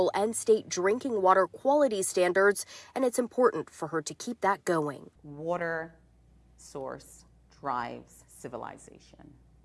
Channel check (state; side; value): identical; both; correlation 1.00